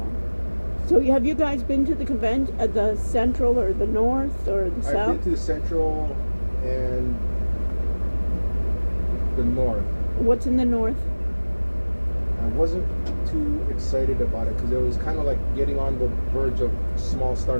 So have you guys been to the convention at the Central or the North or the I've South? been to the Central and the North. What's in the North? I wasn't too excited about it because it was kind of like getting on the verge of small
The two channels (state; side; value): inverted; both; correlation -1.00